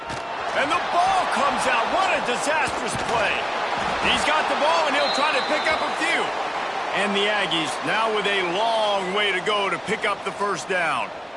And the ball comes out. What a disastrous play. He's got the ball, and he'll try to pick up a few. And the Aggies now with a long way to go to pick up the first down.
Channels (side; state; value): both; identical; correlation 1.00